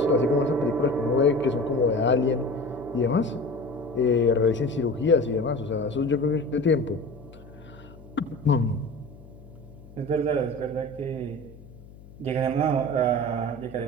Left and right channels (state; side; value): noise; left; hum, 20 dB below the sound